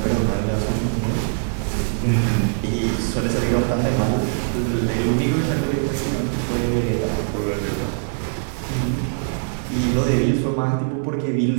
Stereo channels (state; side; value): silent; left; digital silence